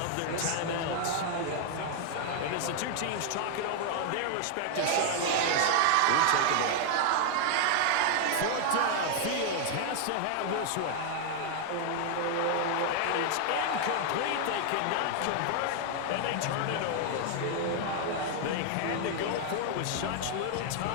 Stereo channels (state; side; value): different; both; correlation 0.00